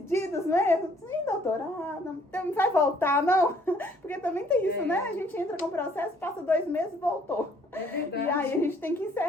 né? Sim, doutora, não vai voltar, não? Porque também tem isso, né? A gente entra com o processo, passa 2 meses, voltou. É verdade. E aí a gente tem que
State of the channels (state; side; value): normal; both; correlation 0.62